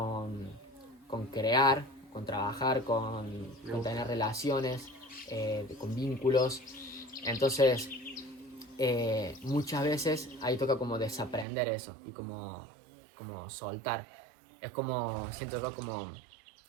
crear, con trabajar, con tener relaciones, con vínculos. Entonces, muchas veces ahí toca como desaprender eso y como soltar. Es como, siento yo como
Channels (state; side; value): drops out; left; at 11.5 s